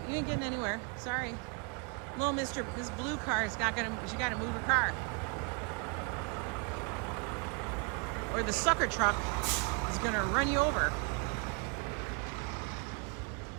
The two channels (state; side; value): quieter; left; 34.1 dB